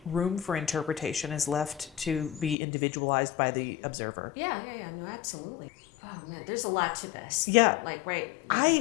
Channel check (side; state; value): right; drops out; at 2.6 s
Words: room for interpretation is left to be individualized by the observer? Yeah. No, absolutely. Oh man, there's a lot to this. Yeah. Like, right.